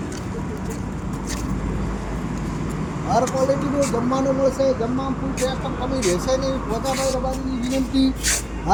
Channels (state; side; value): identical; both; correlation 1.00